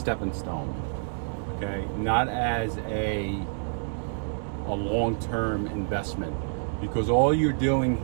stone. Okay, not as a long-term investment, because all you're doing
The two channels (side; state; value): left; silent; digital silence